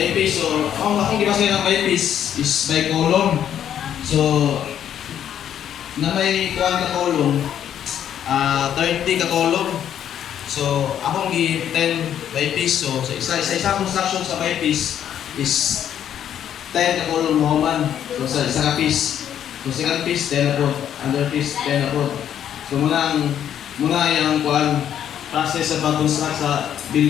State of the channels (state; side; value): quieter; right; 9.9 dB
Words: piece, so, akong gibasa ng by piece is by column. So, na may kuwan ka column, 30 ka column. So, akong gi 10 by piece. So, sa isa construction sa by piece is 10 ka column mo man. So, sa isa ka piece. So, second piece, 10 na po. Under piece, 10 na po. So, muna yung kuwan, process sa pag-construct sa